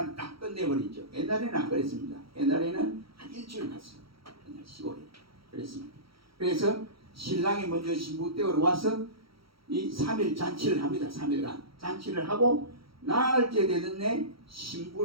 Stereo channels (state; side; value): late; left; 0.75 ms